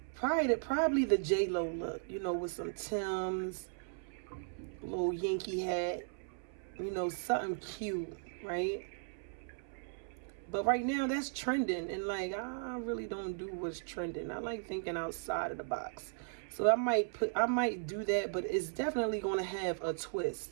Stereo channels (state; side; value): silent; left; 53 dB below the other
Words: probably the J-Lo look, you know, with some Timbs, little Yankee hat, you know, something cute, right? But right now that's trending, and like, I really don't do what's trending. I like thinking outside of the box. So I might do that, but it's definitely going to have a